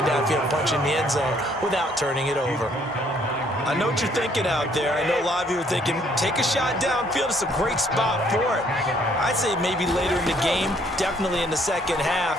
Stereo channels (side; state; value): both; normal; correlation 0.65